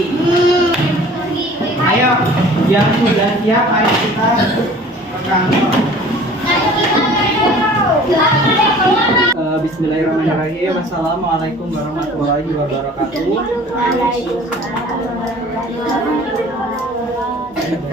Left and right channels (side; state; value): both; normal; correlation 0.47